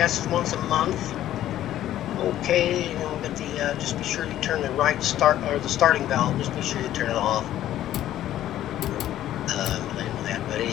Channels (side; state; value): right; quieter; 12.7 dB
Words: once a month. Okay, you know, but the just be sure you turn the right start or the starting valve. Just be sure you turn it off. But